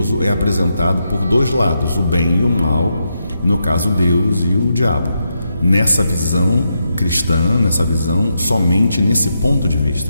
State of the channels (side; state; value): both; inverted; correlation -0.84